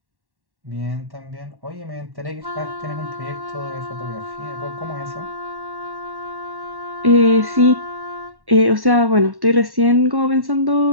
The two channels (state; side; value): late; left; 1.1 ms